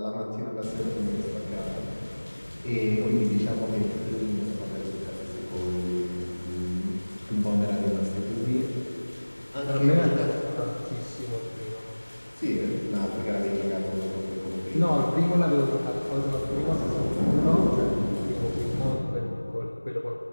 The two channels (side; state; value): both; inverted; correlation -1.00